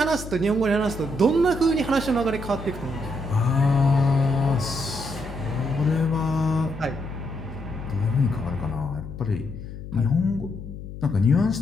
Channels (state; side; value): noise; left; hum, 11 dB below the sound